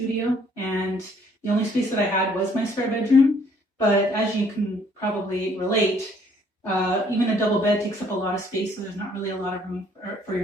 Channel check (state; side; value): normal; both; correlation 0.63